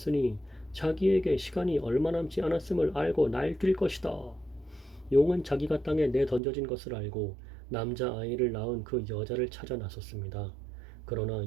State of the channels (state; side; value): drops out; left; at 6.4 s